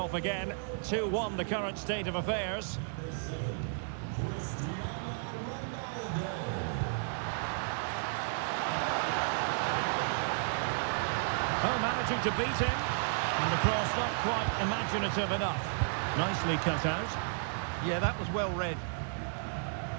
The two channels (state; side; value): silent; left; digital silence